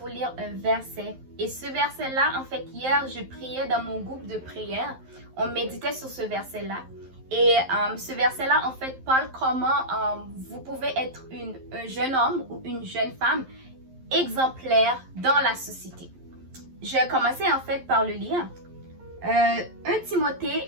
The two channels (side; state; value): left; late; 11 ms